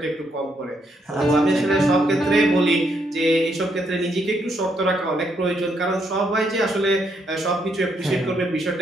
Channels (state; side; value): normal; both; correlation 0.75